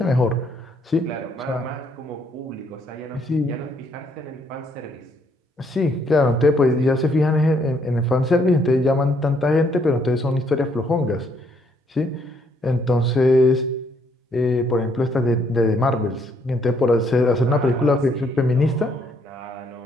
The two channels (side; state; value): both; normal; correlation 0.69